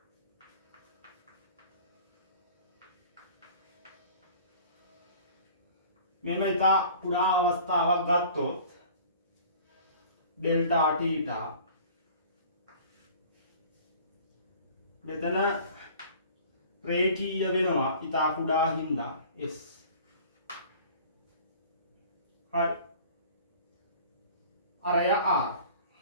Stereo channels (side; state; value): both; inverted; correlation -0.46